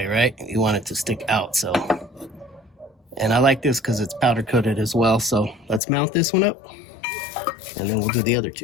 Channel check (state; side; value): drops out; right; at 5.8 s